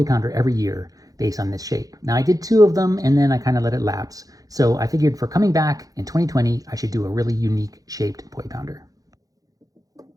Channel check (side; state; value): left; late; 0.17 ms